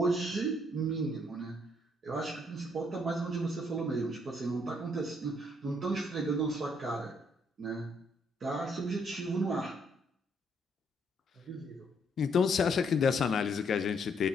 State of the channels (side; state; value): both; normal; correlation 0.70